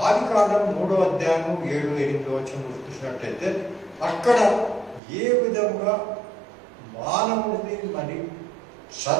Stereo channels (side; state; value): left; drops out; at 5.0 s